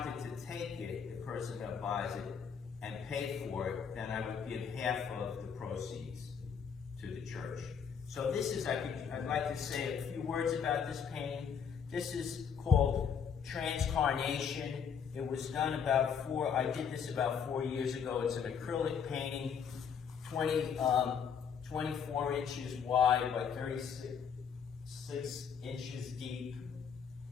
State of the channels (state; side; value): quieter; right; 7.0 dB